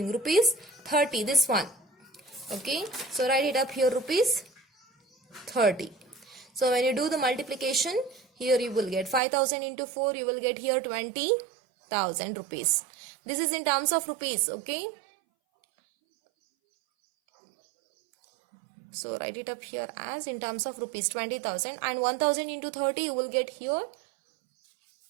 Rupees 30, this one. Okay, so write it up here, rupees 30. So when you do the multiplication, here you will get 5000 into 4, you will get here 20,000 rupees. This is in terms of rupees, okay? So write it up here as in terms of rupees 20,000, and 1000 into 30 you will get here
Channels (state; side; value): drops out; left; at 9.2 s